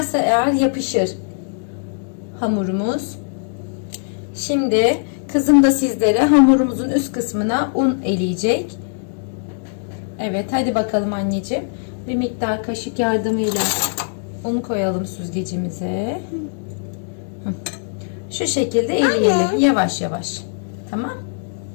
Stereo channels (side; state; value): right; silent; digital silence